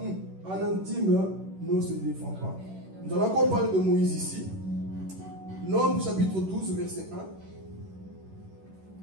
Un intime ne se défend pas. Nous allons encore parler de Moïse ici. Nombres chapitre 12, verset 1.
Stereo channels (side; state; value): left; late; 11 ms